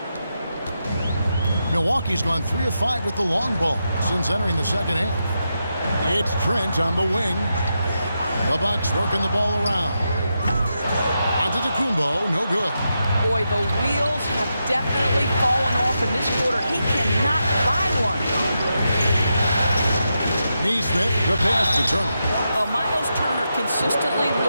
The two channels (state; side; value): inverted; both; correlation -0.86